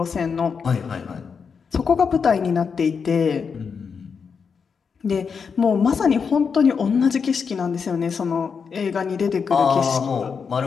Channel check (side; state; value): right; quieter; 6.0 dB